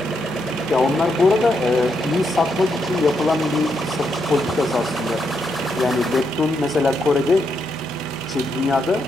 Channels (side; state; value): both; normal; correlation 0.80